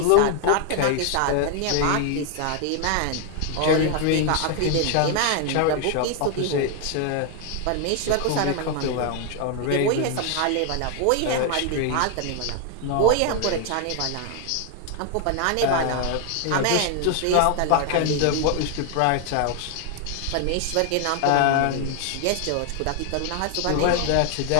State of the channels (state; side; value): different; both; correlation 0.00